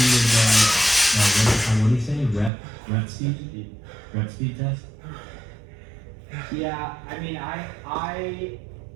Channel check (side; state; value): left; drops out; at 2.5 s